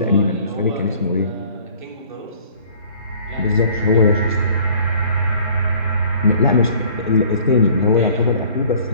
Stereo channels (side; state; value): both; inverted; correlation -0.52